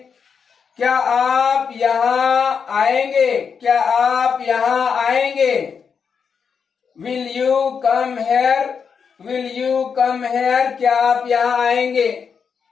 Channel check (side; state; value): right; quieter; 6.3 dB